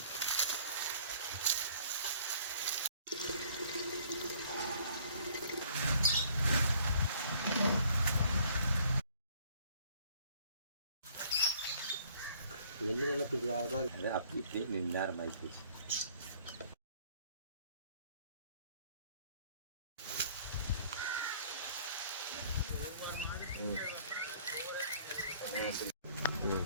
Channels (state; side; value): inverted; both; correlation -0.58